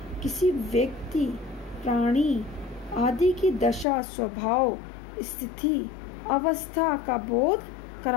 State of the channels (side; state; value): right; drops out; at 3.9 s